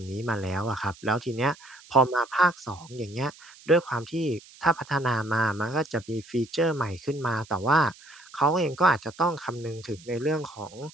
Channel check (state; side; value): noise; right; hiss, 22 dB below the sound